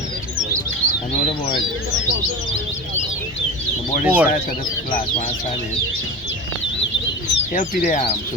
I know the board. The board is side to the last one side in. Help you the arm.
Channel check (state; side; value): normal; both; correlation 0.29